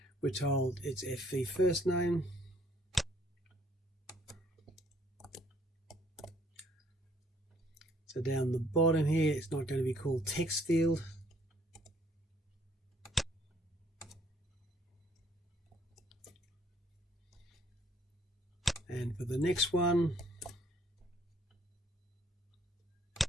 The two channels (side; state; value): both; normal; correlation 0.63